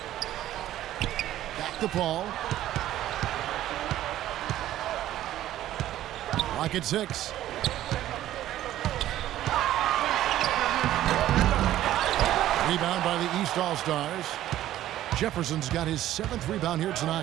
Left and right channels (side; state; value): left; quieter; 13.3 dB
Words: Back to Paul. Lock at 6. Rebound by the East All-Stars. Jefferson's got his 7th rebound here